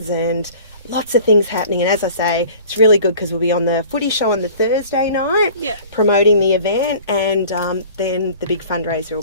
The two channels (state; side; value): inverted; both; correlation -0.46